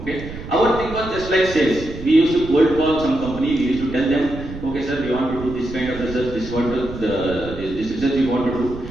Okay. Our thing was just like sales. We used to cold call some company, we used to tell them, okay sir, we want to do this kind of research, this research we want to do,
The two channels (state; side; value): noise; right; rumble, 11 dB below the sound